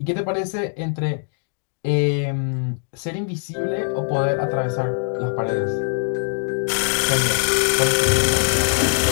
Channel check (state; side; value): silent; right; 64 dB below the other